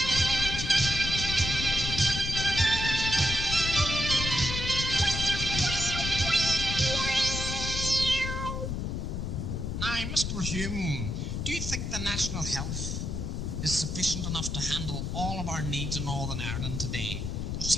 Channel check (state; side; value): noise; left; rumble, 3 dB below the sound